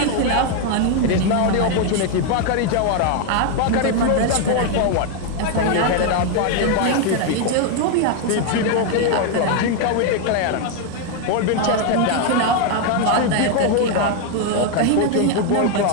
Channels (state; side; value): different; both; correlation 0.01